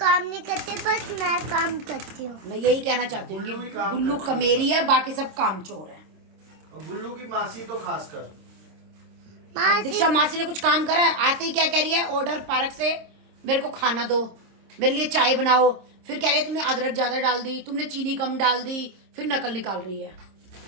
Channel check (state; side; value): late; left; 26 ms